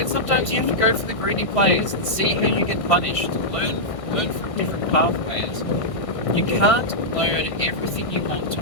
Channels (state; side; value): late; right; 1.6 ms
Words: sometimes you have to go for the greedy plays and see how you get punished. Learn from different pathways. You can't learn everything you want to